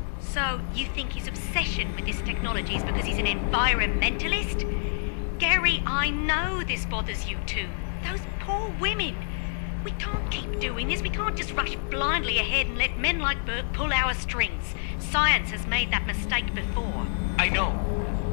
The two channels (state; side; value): silent; right; digital silence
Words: So, you think his obsession with this technology is because he's an environmentalist? Gary, I know this bothers you too. Those poor women. We can't keep doing this. We can't just rush blindly ahead and let men like Burke pull our strings. Science has made that mistake before. I know.